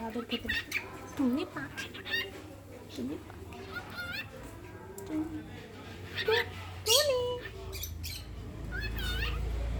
আদর খেতে। টুনি পাখি, টুনি পাখি, টুনি,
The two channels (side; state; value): both; identical; correlation 1.00